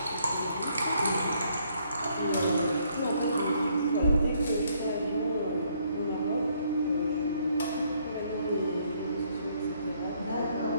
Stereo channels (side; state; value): both; inverted; correlation -0.69